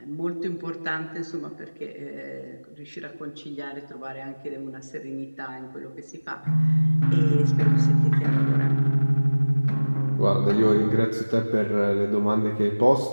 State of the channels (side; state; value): both; inverted; correlation -1.00